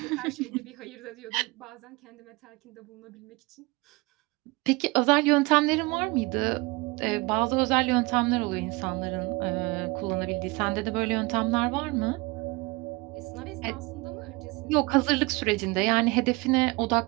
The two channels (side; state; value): left; quieter; 25.2 dB